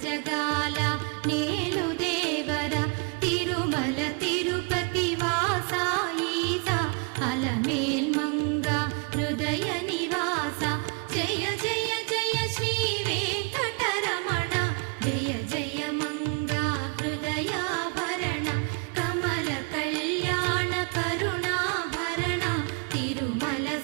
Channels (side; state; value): left; quieter; 34.2 dB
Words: జగాల నేలు దేవర తిరుమల తిరుపతి వాసా ఈసా అలమేల్ మంగ హృదయ నివాస జయ జయ జయ శ్రీ వెంకటరమణ జయ జయ మంగ హృదయాభరణ కమల కళ్యాణ కరుణాభరణ తిరుమల